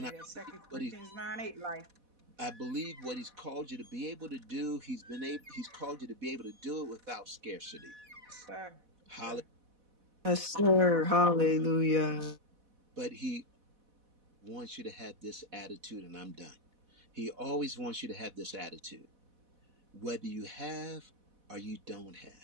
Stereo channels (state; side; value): late; left; 4.1 ms